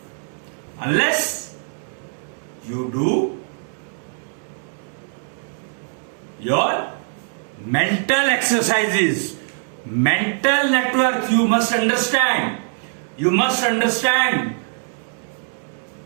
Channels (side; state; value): left; silent; digital silence